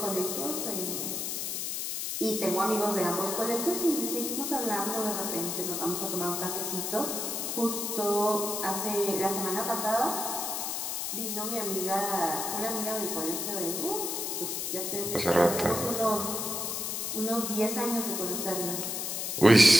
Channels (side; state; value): left; noise; hiss, 2 dB below the sound